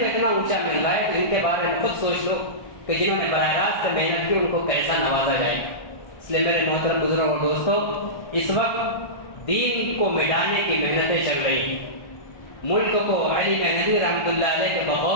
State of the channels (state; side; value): late; right; 1.6 ms